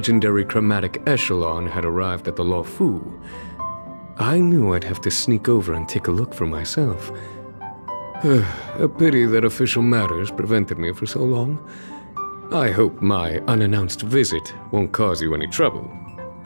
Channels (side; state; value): both; inverted; correlation -1.00